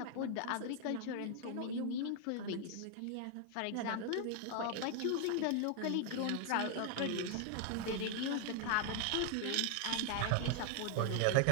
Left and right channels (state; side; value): different; both; correlation 0.00